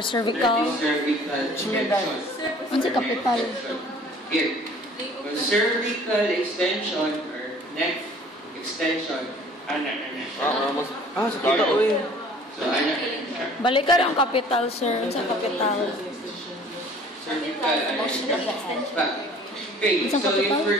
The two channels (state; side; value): normal; both; correlation 0.51